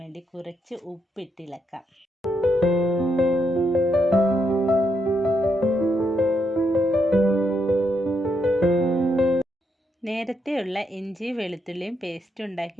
വേണ്ടി കുറച്ച് ഉപ്പിട്ടിളക്കാം. നേരത്തെയുള്ള ഇഞ്ചി വെളുത്തുള്ളിയും പേസ്റ്റ്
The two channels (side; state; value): both; normal; correlation 0.79